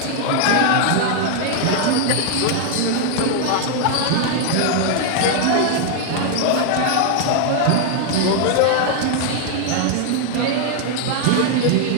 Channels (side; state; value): both; different; correlation 0.00